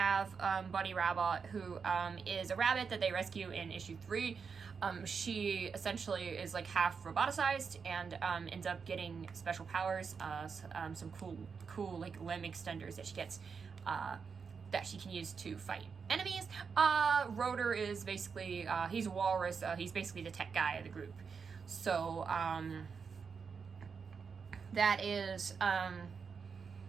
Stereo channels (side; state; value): left; quieter; 5.8 dB